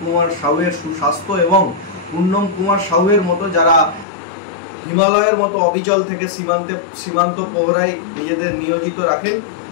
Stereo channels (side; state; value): right; drops out; at 4.0 s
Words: কুমার সাউয়ের সুস্বাস্থ্য এবং পূর্ণম কুমার সাউয়ের মতো যারা হিমালয়ের মতো অবিচল থেকে সীমান্ত প্রহরায় নিজেদের নিয়োজিত রাখেন,